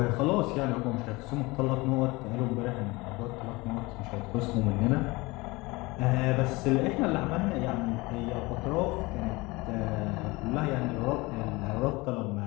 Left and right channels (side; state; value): right; quieter; 23.2 dB